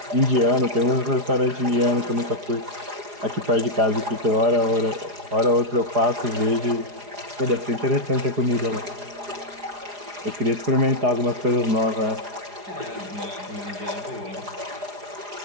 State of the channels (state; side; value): late; left; 4.8 ms